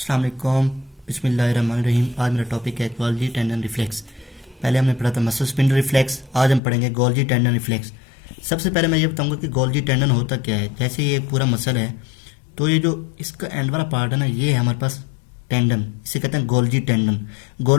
वालेकुम, बिस्मिल्लाहिर्रहमानिर्रहीम। आज मेरा टॉपिक है गोल्जी टेंडन रिफ्लेक्स। पहले हमने पढ़ा था मसल स्पिंडल रिफ्लेक्स, आज हम पढ़ेंगे गोल्जी टेंडन रिफ्लेक्स। सबसे पहले मैं ये बताऊंगा कि गोल्जी टेंडन होता क्या है। जैसे ये पूरा मसल है तो ये जो इसका एंड वाला पार्ट है ना, ये है हमारे पास टेंडन, इसे कहते हैं गोल्जी टेंडन।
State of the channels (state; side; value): drops out; right; at 6.6 s